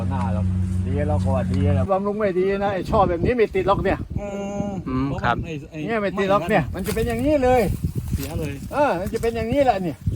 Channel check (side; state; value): both; identical; correlation 1.00